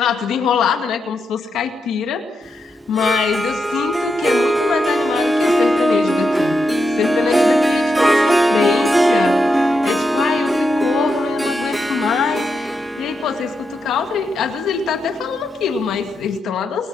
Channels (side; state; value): both; normal; correlation 0.85